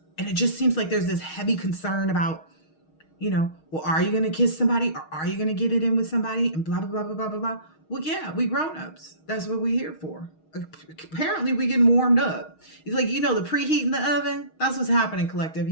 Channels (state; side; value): late; right; 6.4 ms